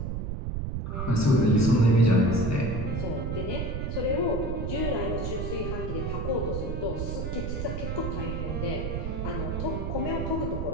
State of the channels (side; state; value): right; noise; rumble, 3 dB below the sound